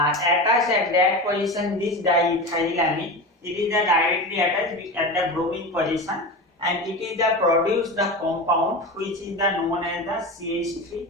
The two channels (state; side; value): normal; both; correlation 0.26